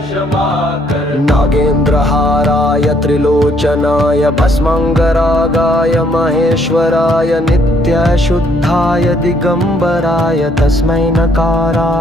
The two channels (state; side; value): normal; both; correlation 0.68